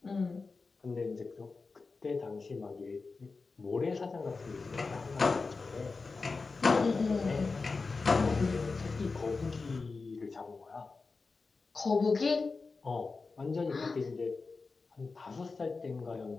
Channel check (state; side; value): quieter; right; 4.2 dB